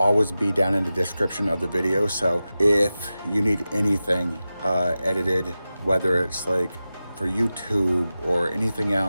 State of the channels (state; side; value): inverted; both; correlation -0.94